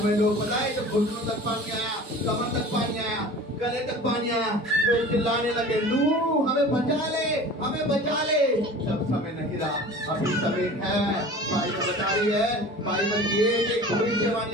में लोग बताए तो घुटनों तक पानी आया, कमर तक पानी आया, गले तक पानी आया, लोग चिल्लाने लगे, नूह हमें बचा ले, हमें बचा ले। जब समय नहीं रहा, अभी समय है। बाइबल बता रही है, बाइबल की एक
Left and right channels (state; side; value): normal; both; correlation 0.40